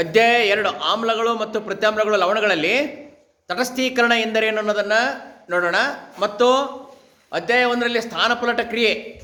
2 ಆಮ್ಲಗಳು ಮತ್ತು ಪ್ರತ್ಯಾಮ್ಲಗಳು ಲವಣಗಳಲ್ಲಿ ತಟಸ್ಥೀಕರಣ ಎಂದರೇನು ಅನ್ನೋದನ್ನು ನೋಡೋಣ. ಮತ್ತು ಅಧ್ಯಾಯ 1ರಲ್ಲಿ ಸ್ಥಾನಪಲ್ಲಟ ಕ್ರಿಯೆ,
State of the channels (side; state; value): both; identical; correlation 1.00